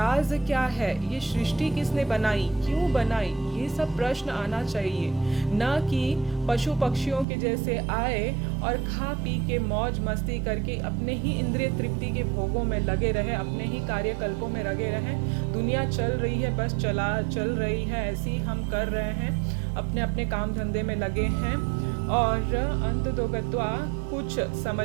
क्या है, ये सृष्टि किसने बनाई, क्यों बनाई, ये सब प्रश्न आना चाहिए। न कि पशु पक्षियों के जैसे आए और खा पी के मौज मस्ती करके अपने ही इंद्रिय तृप्ति के भोगों में लगे रहे, अपने ही कार्यकल्पों में लगे रहे। दुनिया चल रही है, बस चल रही है, ऐसे ही हम कर रहे हैं, अपने अपने काम धंधे में लगे हैं और अंत तो गत्वा कुछ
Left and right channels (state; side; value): drops out; left; at 7.2 s